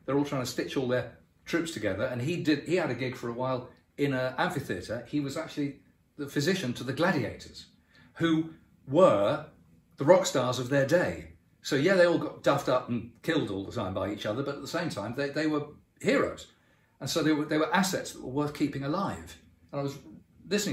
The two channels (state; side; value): identical; both; correlation 1.00